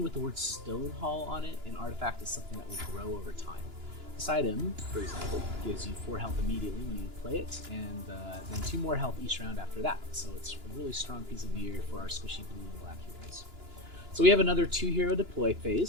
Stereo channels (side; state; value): left; late; 2.9 ms